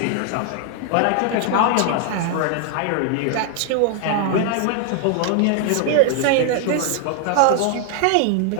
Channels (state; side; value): different; both; correlation 0.00